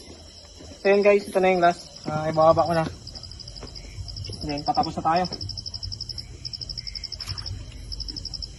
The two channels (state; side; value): identical; both; correlation 1.00